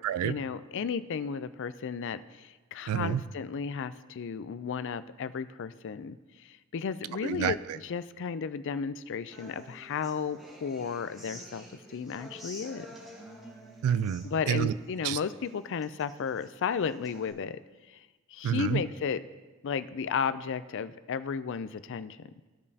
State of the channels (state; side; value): normal; both; correlation 0.09